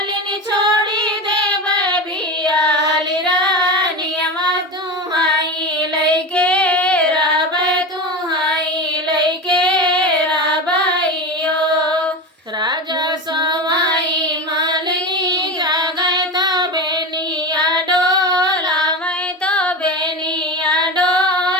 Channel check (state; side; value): normal; both; correlation 0.24